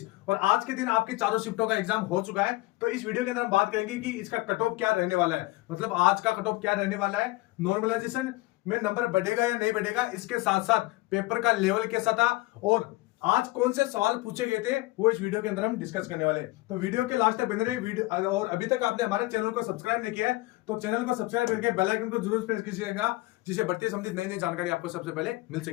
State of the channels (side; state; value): right; quieter; 20.7 dB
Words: और आज के दिन आपकी चारों शिफ्टों का एग्जाम हो चुका है। तो इस वीडियो के अंदर हम बात करेंगे कि इसका कट ऑफ क्या रहने वाला है, मतलब आज का कट ऑफ क्या रहने वाला है, नॉर्मलाइजेशन में नंबर बढ़ेगा या नहीं बढ़ेगा, इसके साथ साथ पेपर का लेवल कैसा था और आज कौन से सवाल पूछे गए थे वो इस वीडियो के अंदर हम डिस्कस करने वाले हैं। तो वीडियो के लास्ट तक बने रहे वीडियो, और अभी तक आपने हमारे चैनल को सब्सक्राइब नहीं किया है तो चैनल को सब्सक्राइब करके बेल आइकन को जरूर प्रेस कीजिएगा, जिससे भर्ती संबंधित नई नई जानकारी आपको सबसे पहले मिल